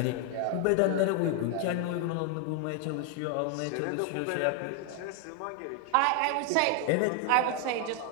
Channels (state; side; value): different; both; correlation 0.00